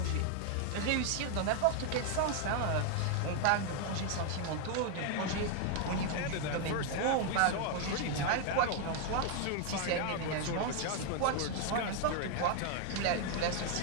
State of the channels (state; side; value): different; both; correlation 0.01